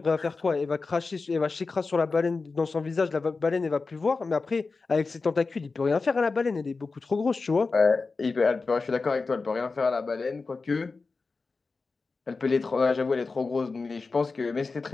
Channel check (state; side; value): quieter; right; 4.1 dB